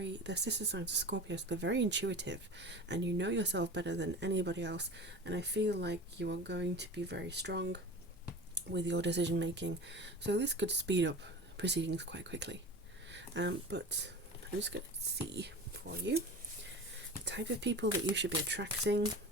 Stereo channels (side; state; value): both; normal; correlation 0.35